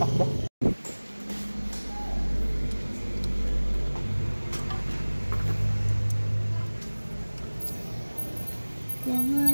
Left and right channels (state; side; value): inverted; both; correlation -1.00